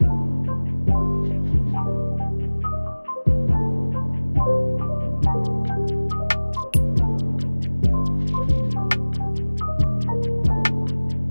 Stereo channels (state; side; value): inverted; both; correlation -1.00